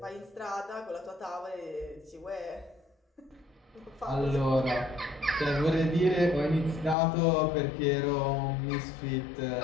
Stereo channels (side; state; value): right; drops out; at 7.0 s